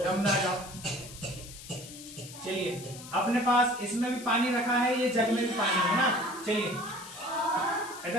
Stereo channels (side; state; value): left; noise; hiss, 15 dB below the sound